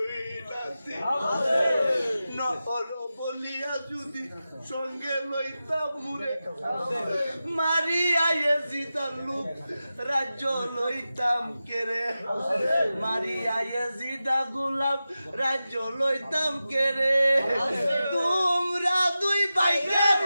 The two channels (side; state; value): both; inverted; correlation -0.93